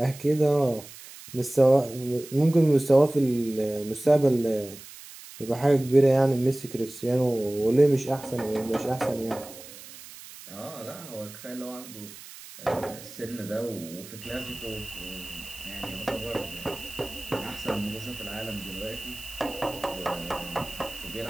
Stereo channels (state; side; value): noise; right; hiss, 16 dB below the sound